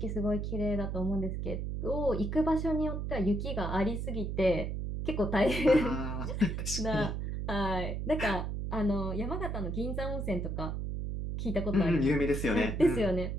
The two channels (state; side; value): noise; right; hum, 3 dB below the sound